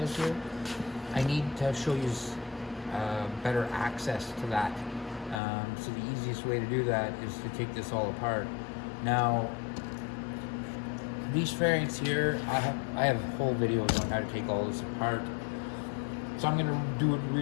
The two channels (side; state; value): right; drops out; at 5.4 s